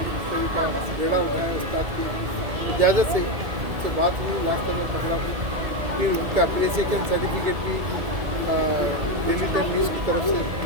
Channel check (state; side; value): late; left; 2.2 ms